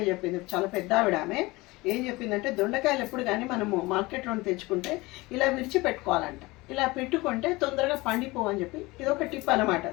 చెప్పింది, చాలా పెద్ద ఆవిడ. ఆమె ఏం చెప్పిందంటే దొండకాయలు ఎప్పుడు కానీ మనము మార్కెట్లో తెచ్చుకుంటే ఇలా విరిచి పెట్టుకోవాలంట. ఇలా పెట్టుకుంటే తొందరగా పండిపోవని చెప్పి ఇది ఒక టిప్ అనమాట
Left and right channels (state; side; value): quieter; right; 22.0 dB